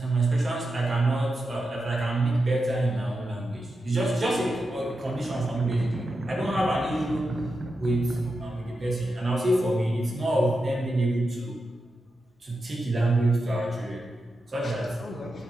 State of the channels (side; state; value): both; normal; correlation 0.89